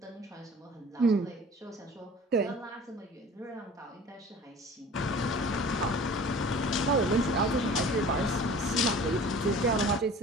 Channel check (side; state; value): both; normal; correlation 0.44